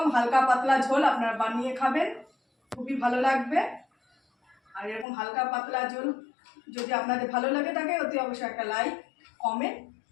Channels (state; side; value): drops out; right; at 5.1 s